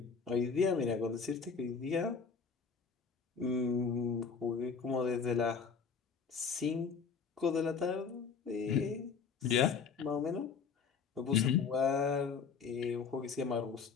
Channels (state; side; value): quieter; right; 5.8 dB